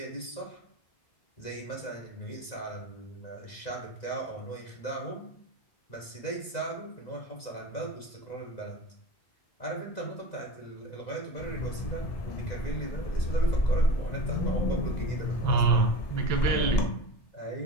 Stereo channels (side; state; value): right; late; 1.9 ms